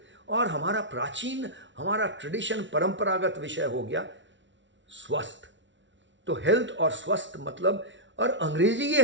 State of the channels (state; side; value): late; left; 0.55 ms